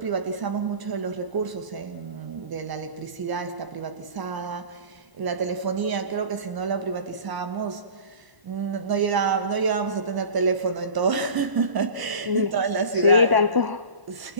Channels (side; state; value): left; late; 1.0 ms